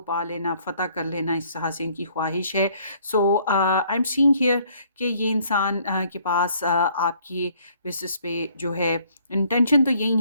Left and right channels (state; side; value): inverted; both; correlation -0.63